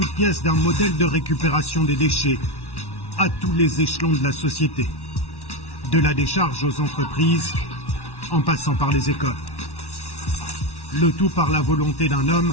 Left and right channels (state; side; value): late; right; 1.1 ms